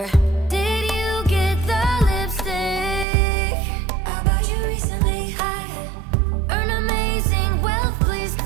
Did you get the lipstick I bought you recently? I earn amazing wealth, please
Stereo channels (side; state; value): left; drops out; at 3.1 s